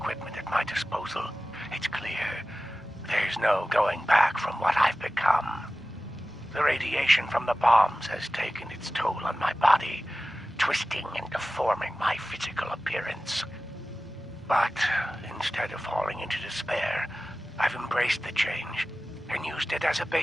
at my disposal, it's clear there's no going back from what I've become. The radiation from the bombs has taken its toll on my body, twisting and deforming my physical appearance. But instead of falling into despair, I've embraced the change and used it as a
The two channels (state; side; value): normal; both; correlation 0.96